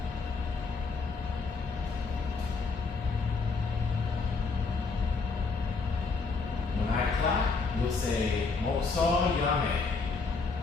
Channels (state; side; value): quieter; right; 4.4 dB